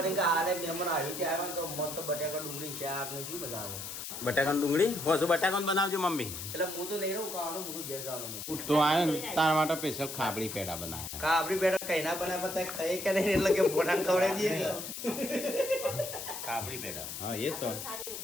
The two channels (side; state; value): left; noise; hiss, 7 dB below the sound